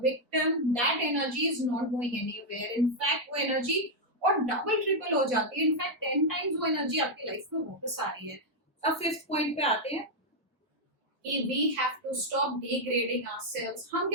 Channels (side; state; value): both; normal; correlation -0.01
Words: victim, that energy is not going anywhere. In fact वो एनर्जी और डबल ट्रिपल हो जाती है, इनफैक्ट 10 टाइम्स वो एनर्जी आपकी लाइफ में वापस आ रही है। अब फिफ्थ पॉइंट पे आते हैं कि we have to stop degrading ourselves। हम